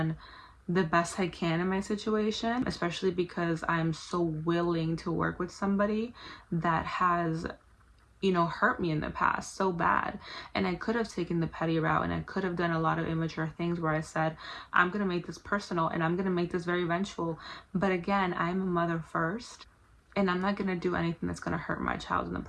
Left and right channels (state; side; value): identical; both; correlation 1.00